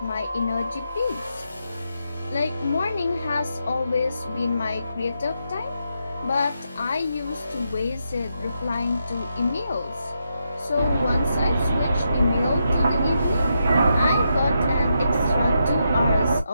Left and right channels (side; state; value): both; inverted; correlation -0.82